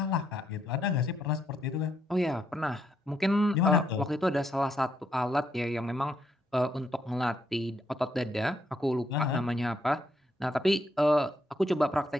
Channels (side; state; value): both; normal; correlation 0.76